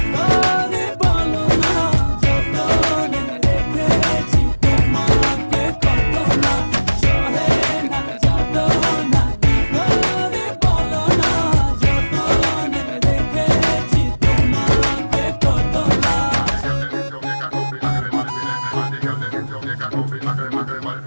করে বলো না, যতনে রেখেছি তোমাকে কত না। সহে না যত না কি করে বলো না, যতনে রেখেছি তোমাকে কত না।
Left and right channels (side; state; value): both; inverted; correlation -1.00